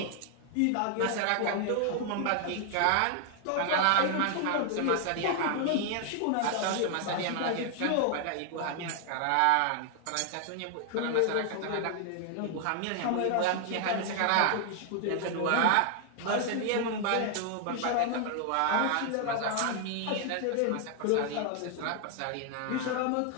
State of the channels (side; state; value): both; different; correlation 0.00